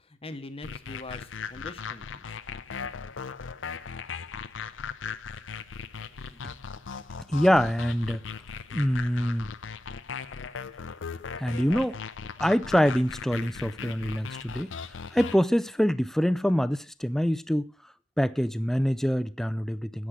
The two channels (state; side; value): normal; both; correlation 0.93